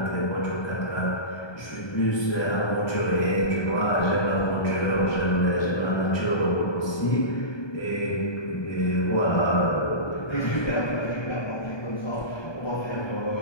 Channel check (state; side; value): late; right; 1.2 ms